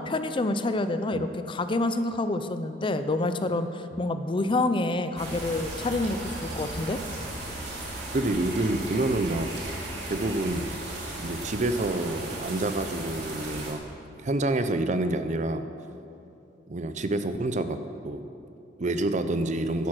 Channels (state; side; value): normal; both; correlation 0.56